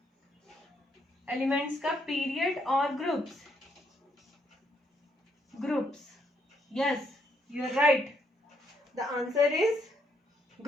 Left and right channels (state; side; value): normal; both; correlation 0.73